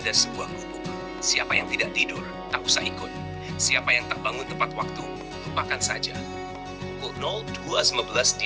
sebuah gubuk. Siapa yang tidak tidur, tak usah ikut. Siapa yang tak bangun tepat waktu, lupakan saja. Pukul 02.15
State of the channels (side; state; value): both; identical; correlation 1.00